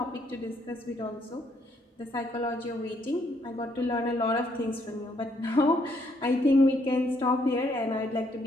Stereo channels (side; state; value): both; normal; correlation 0.71